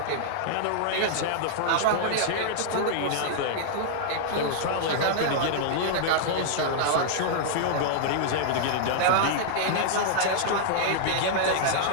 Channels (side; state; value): both; different; correlation -0.01